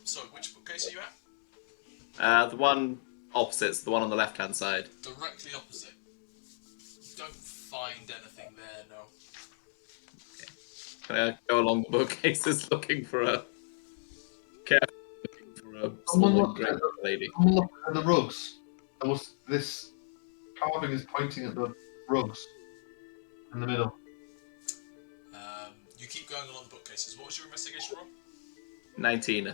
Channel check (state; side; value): silent; right; digital silence